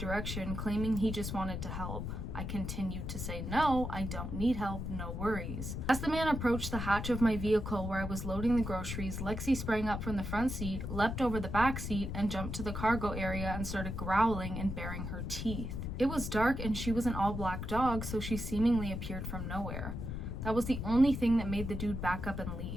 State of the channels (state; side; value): noise; left; rumble, 5 dB below the sound